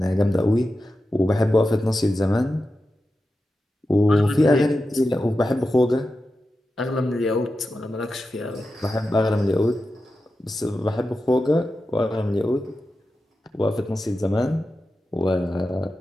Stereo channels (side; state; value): both; normal; correlation 0.91